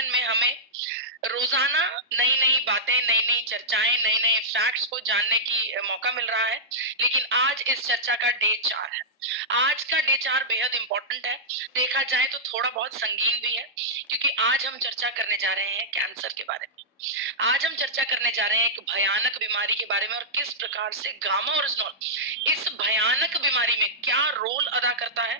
में हमें रोजाना नई नई बातें, नई नई चर्चाएं, नए नए फैक्ट्स को जानने की मौका मिल रहा है। लेकिन आज इस चर्चा का डे 4 है। आज का डे 4 बेहद इंपॉर्टेंट है। देखा जाए तो थोड़ा बहुत संगीन भी है, क्योंकि आज हम चर्चा करने जा रहे हैं कैंसर के बारे में। आज हम चर्चा करने जा रहे हैं एक भयानक बीमारी के बारे में, और किस प्रकार से गामा ओरिजिनॉल इस भयानक बीमारी में क्या रोल अदा करता है।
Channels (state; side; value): normal; both; correlation -0.12